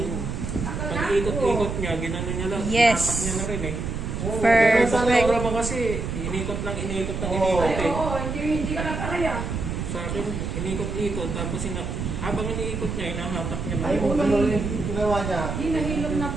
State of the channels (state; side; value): noise; right; rumble, 4 dB below the sound